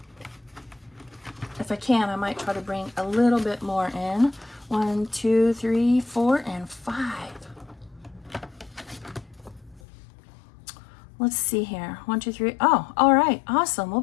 If I can, I might try to bring a little bit more in. 1, 2, 3, 4, and 5. Let's see here. 1, 2, 3. Oh, all right. Awesome. We'll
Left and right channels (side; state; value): right; drops out; at 9.8 s